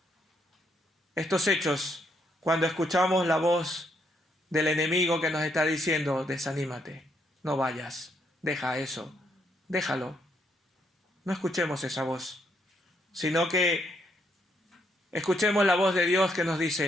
estos hechos cuando escuchamos la voz del enemigo que nos está diciendo, desanímate, no vayas, deja eso, déjalo. No escuchemos esa voz, sino que escuchemos la voz de Dios que nos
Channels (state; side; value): normal; both; correlation 0.74